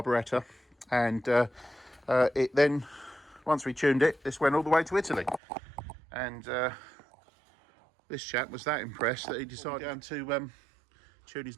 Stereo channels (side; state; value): left; drops out; at 5.4 s